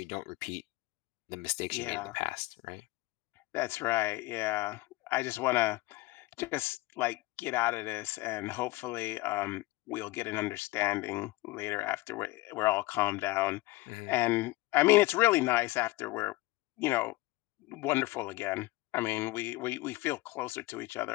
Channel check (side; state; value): right; quieter; 20.7 dB